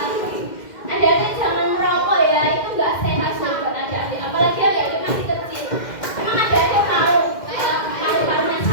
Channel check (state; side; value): late; right; 2.1 ms